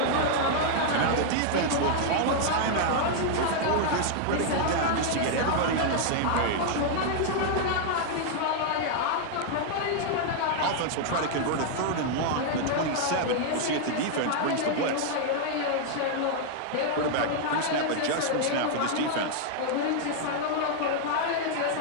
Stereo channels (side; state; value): both; different; correlation 0.00